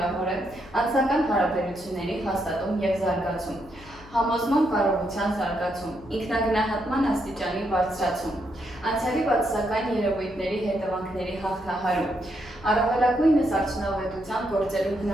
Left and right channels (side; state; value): left; noise; hum, 21 dB below the sound